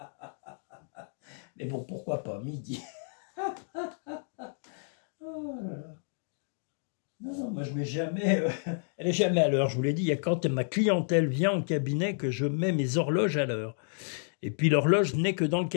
Mais bon, pourquoi pas midi? Oh là là. Non, moi je mets jamais... elle est jamais à l'heure, je vous l'ai dit. Il y a quand ma clientèle vient au cabinet que je mets mes horloges à l'heure. Et puis l'horloge n'est que dans le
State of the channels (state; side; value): silent; right; digital silence